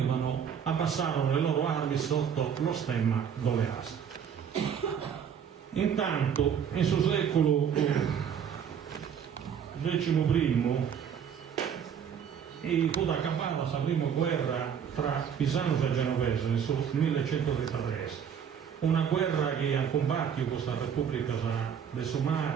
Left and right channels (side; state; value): left; quieter; 7.9 dB